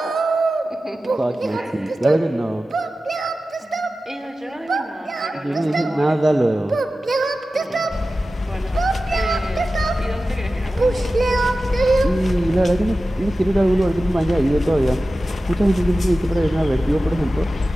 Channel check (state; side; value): normal; both; correlation 0.95